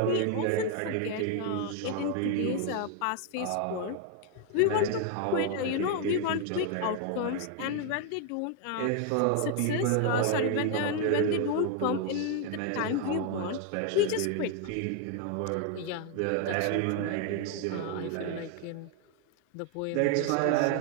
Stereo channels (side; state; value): both; different; correlation 0.01